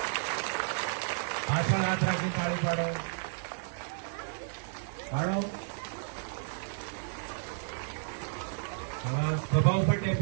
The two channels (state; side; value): silent; left; digital silence